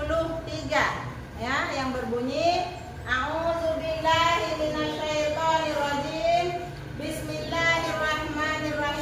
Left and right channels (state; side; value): identical; both; correlation 1.00